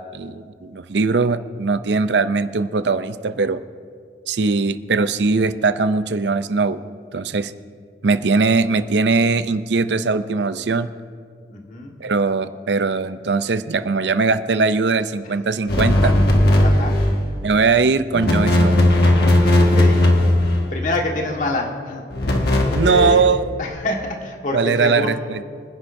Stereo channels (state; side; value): normal; both; correlation 0.46